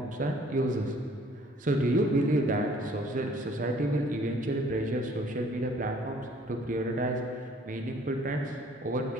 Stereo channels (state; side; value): normal; both; correlation 0.57